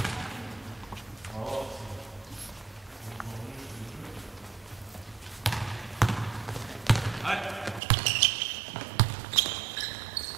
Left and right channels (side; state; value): left; drops out; at 7.8 s